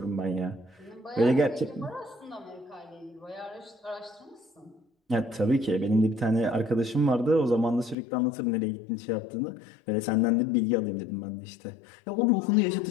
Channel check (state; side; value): drops out; right; at 8.0 s